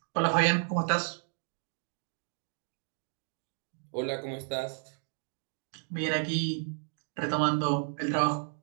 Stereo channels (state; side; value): silent; left; digital silence